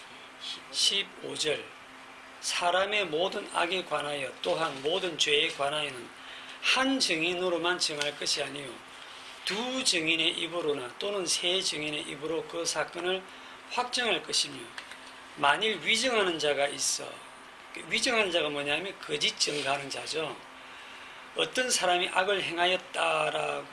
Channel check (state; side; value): identical; both; correlation 1.00